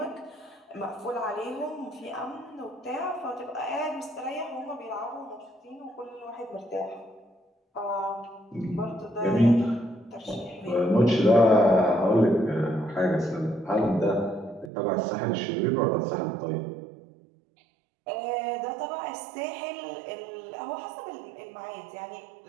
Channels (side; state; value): left; drops out; at 14.7 s